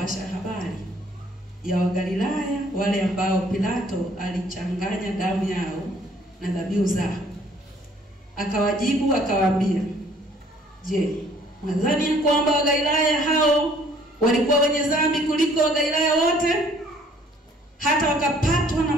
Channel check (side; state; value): both; normal; correlation 0.59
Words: habari ya Wagalilaya wale ambao Pilato alichanganya damu yao na dhabihu zao. Akawajibu akawaambia, je, mwadhani kwamba Wagalilaya hao walikuwa wenye dhambi kuliko Wagalilaya wote hata wakapatwa na